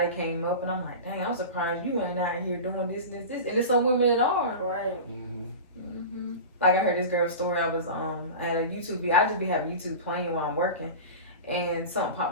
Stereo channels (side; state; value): both; inverted; correlation -0.30